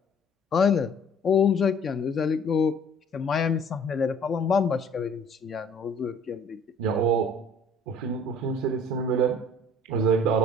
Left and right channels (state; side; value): normal; both; correlation 0.53